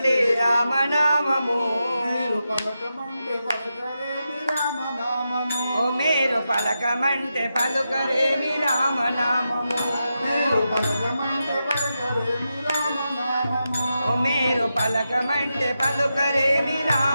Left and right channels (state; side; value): inverted; both; correlation -0.88